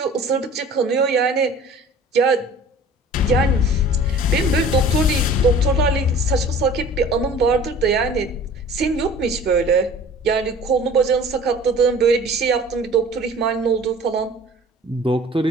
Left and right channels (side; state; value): both; normal; correlation 0.45